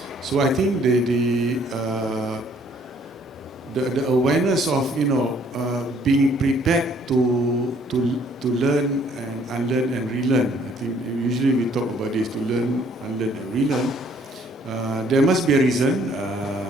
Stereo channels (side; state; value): both; normal; correlation 0.62